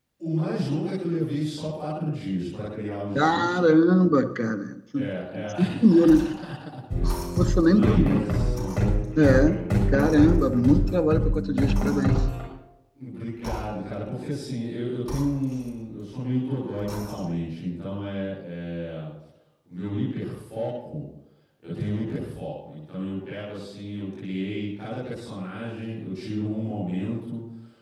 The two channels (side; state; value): both; identical; correlation 1.00